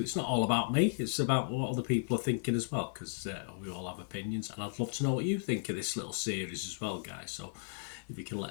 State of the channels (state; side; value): silent; right; digital silence